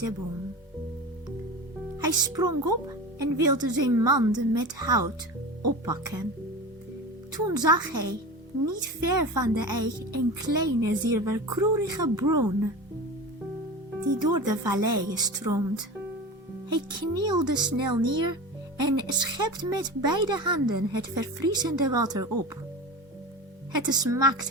boom. Hij sprong op en wilde zijn mand met hout oppakken. Toen zag hij, niet ver van de eik, een kleine, zilverkleurige bron, die door de vallei stroomt. Hij knielde snel neer en schept met beide handen het verfrissende water op. Het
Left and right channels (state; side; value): normal; both; correlation 0.30